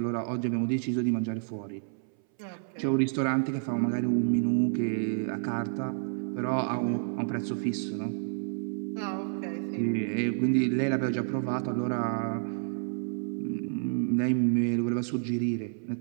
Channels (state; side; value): silent; left; 58 dB below the other